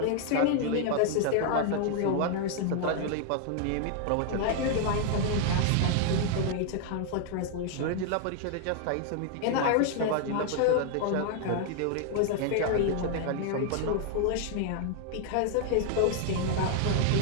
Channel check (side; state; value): both; different; correlation 0.00